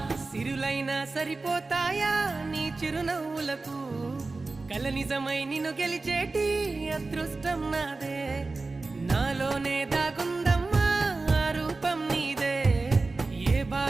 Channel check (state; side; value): quieter; left; 3.6 dB